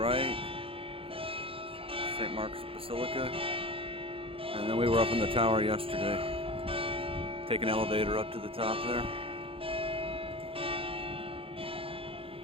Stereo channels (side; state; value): left; late; 0.27 ms